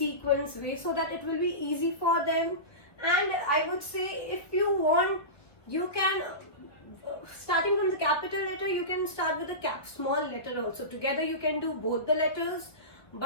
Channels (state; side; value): late; right; 1.5 ms